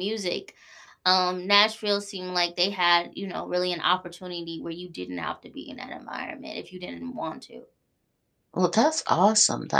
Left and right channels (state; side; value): identical; both; correlation 1.00